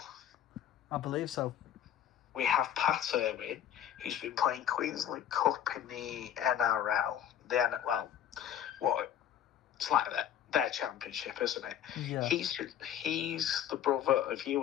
I believe so. We have Pat Irwin, who's been playing Queensland Cup in the NRL. It's like their championship, isn't it? Yeah. He's the brother of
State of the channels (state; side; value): quieter; right; 10.2 dB